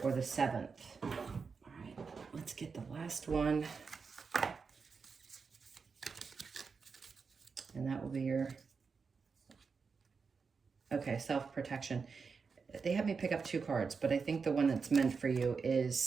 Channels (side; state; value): left; quieter; 5.2 dB